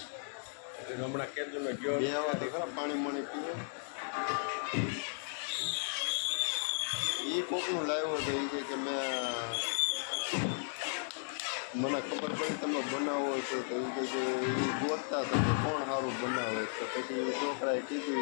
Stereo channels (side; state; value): right; silent; digital silence